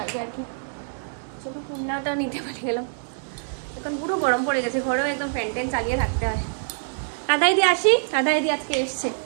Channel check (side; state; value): left; silent; digital silence